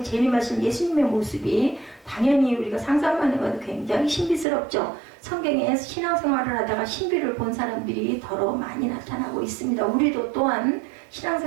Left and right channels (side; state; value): left; drops out; at 4.5 s